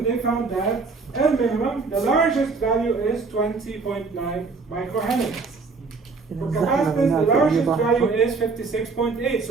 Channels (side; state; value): left; quieter; 4.4 dB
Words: they found that L minimum, the largest value is 20.9 microhenry. For capacitance, the largest value is 56.8.